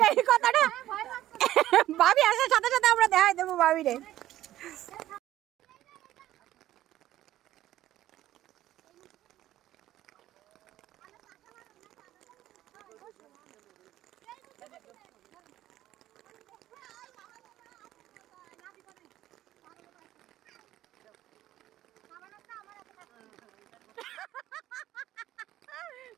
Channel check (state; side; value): quieter; left; 13.8 dB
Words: এই কথাটা ভাবি আসার সাথে সাথে আমরা দেখাই দেবো ভাবি রে